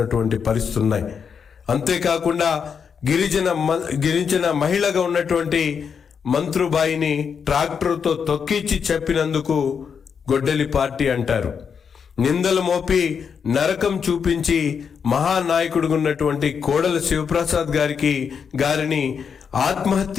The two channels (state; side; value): quieter; right; 6.6 dB